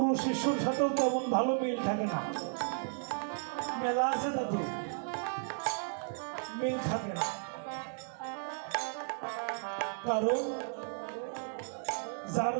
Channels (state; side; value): silent; left; digital silence